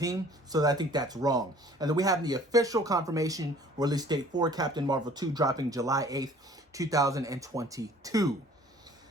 So I think that's wrong. And then we have the official confirmation release date for Captain Marvel 2 dropping July 8th, 2022.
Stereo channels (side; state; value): both; normal; correlation 0.52